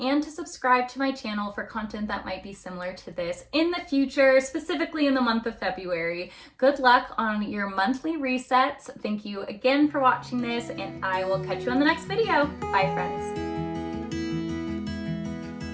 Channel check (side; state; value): both; identical; correlation 1.00